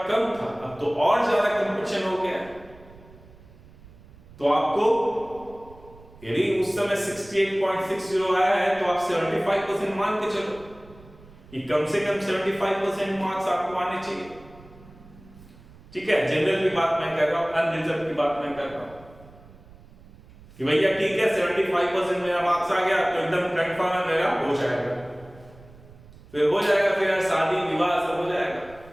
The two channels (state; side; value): noise; right; rumble, 22 dB below the sound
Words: कम था। अब तो और ज्यादा कंपटीशन हो गया। तो आपको यदि उस समय 68.60 आया है तो आप 75% मान के चलो कि कम से कम 75% मार्क्स आपको आने चाहिए। ठीक है, जनरल की बात मैं कर रहा हूं, अनरिजर्व की बात मैं कर रहा हूं कि भैया ठीक है 75% मेरा मार्क्स आ गया तो एकदम कंफर्म है मेरा हो जाएगा, फिर हो जाएगा, फिर शादी विवाह सब हो जाएगा,